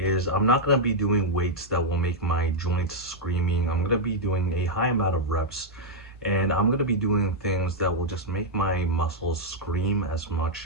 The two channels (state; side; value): normal; both; correlation -0.02